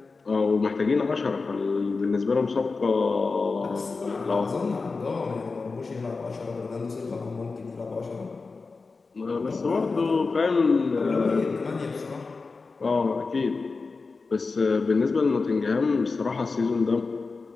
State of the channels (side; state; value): right; quieter; 4.2 dB